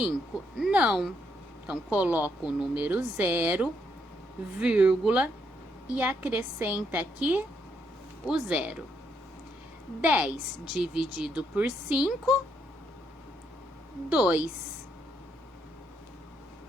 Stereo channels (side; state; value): both; normal; correlation 0.75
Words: Não. Então, coloco o número 0, vírgula, e acrescenta aqui o 0. 10 dividido por 5, 2.